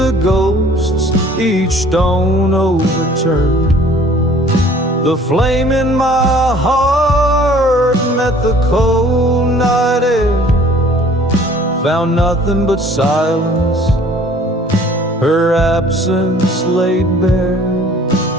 ghosts, each stone overturned. The flame in my heart met the cold night air, found nothing but silence, her absence laid bare.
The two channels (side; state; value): both; normal; correlation 0.53